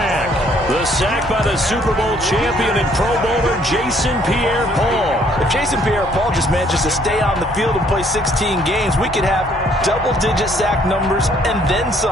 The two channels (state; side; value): normal; both; correlation 0.63